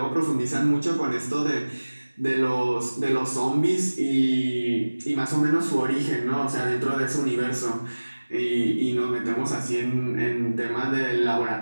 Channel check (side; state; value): both; inverted; correlation -1.00